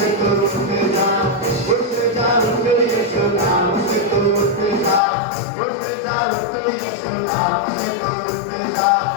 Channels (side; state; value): right; drops out; at 5.0 s